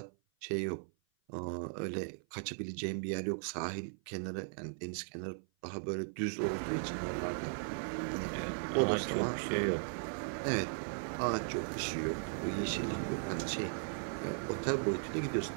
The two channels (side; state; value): left; silent; 53 dB below the other